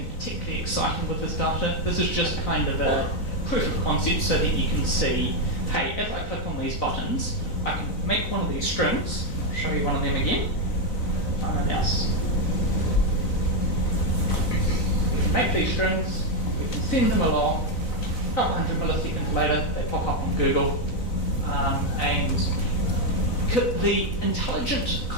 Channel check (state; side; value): late; right; 4.0 ms